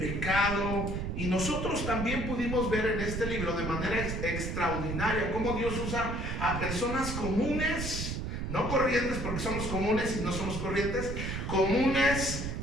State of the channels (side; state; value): right; noise; rumble, 3 dB below the sound